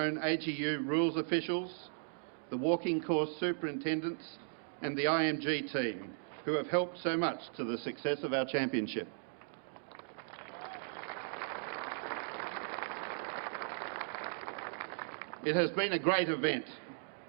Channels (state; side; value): silent; left; digital silence